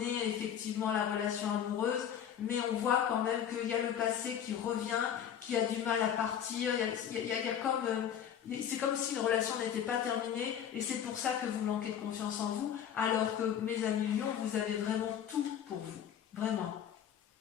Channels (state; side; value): quieter; right; 9.1 dB